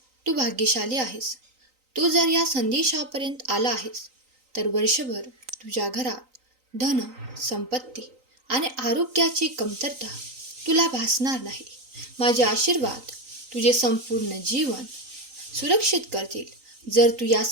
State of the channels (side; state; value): left; late; 3.9 ms